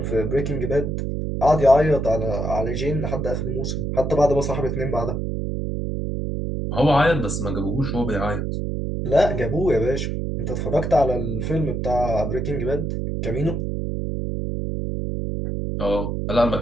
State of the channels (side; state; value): right; noise; hum, 2 dB below the sound